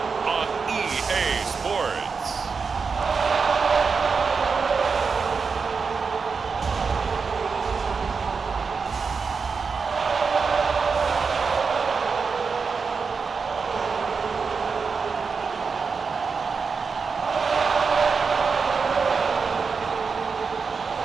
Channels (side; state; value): left; quieter; 5.2 dB